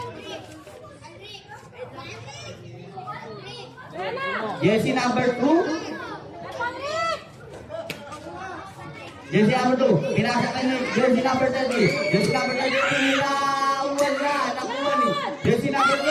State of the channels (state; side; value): identical; both; correlation 1.00